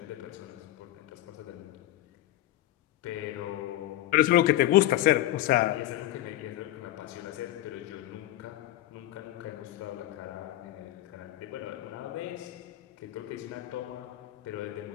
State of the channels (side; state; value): right; quieter; 14.5 dB